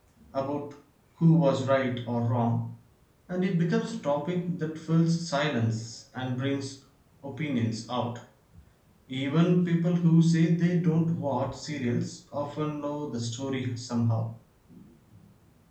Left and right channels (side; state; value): both; identical; correlation 1.00